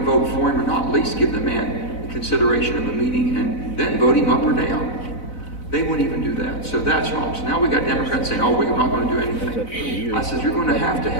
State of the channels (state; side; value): late; right; 4.0 ms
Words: for him or not, at least give the man the consideration of a meeting and then vote him up or down. They wouldn't even do that. So that's wrong. So now we got Democrats saying, oh, we're not going to do anything. I said, you're going to have